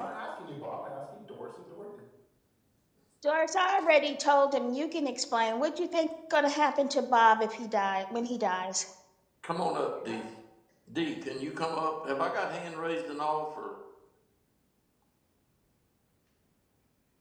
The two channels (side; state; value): both; identical; correlation 1.00